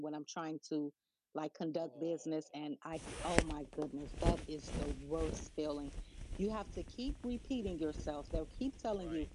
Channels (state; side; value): identical; both; correlation 1.00